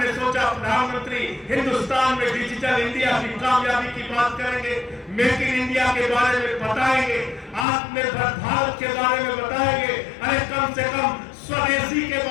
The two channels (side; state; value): right; drops out; at 7.7 s